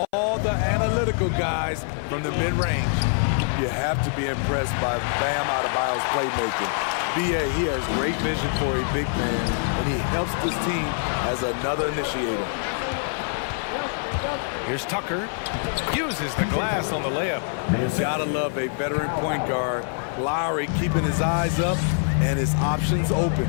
all the analytical guys from the mid-range. You have to be impressed by Bam Adebayo's playmaking. B.A., he has great vision for a big man, and he helps this team as another initiator. Here's Tucker. Uses the glass on the layup. Gotta love a veteran point guard. Lowry keeping his eyes up and his options open.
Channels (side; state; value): right; silent; 56 dB below the other